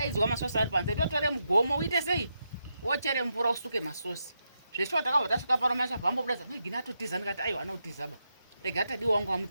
masosi ari panze totore mugomo uite sei wochere mvura usuke masosi zveshuwa takabva tasvika pano mashavhambobudaza megini atotiza ndikati aiwa anotizaba rega tadi wangu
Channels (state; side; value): inverted; both; correlation -0.84